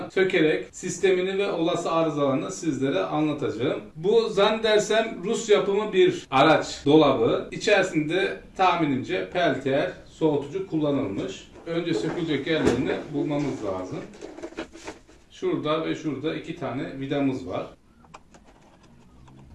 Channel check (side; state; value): both; identical; correlation 1.00